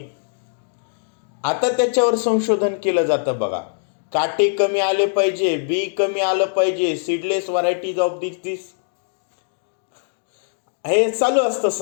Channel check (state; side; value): silent; right; digital silence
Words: आता त्याच्यावर संशोधन केलं जातं बघा. काटे कमी आले पाहिजे, बी कमी आलं पाहिजे, सीडलेस व्हरायटीज ऑफ दिस हे चालू असतं